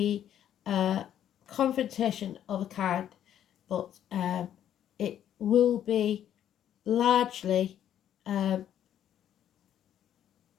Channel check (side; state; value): right; quieter; 10.5 dB